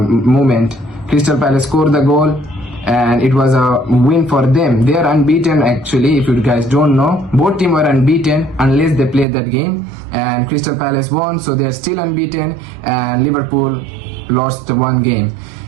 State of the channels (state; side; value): drops out; left; at 9.2 s